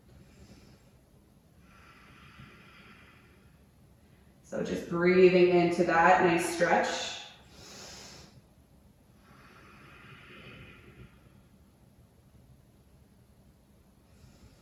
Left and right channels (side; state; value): both; identical; correlation 1.00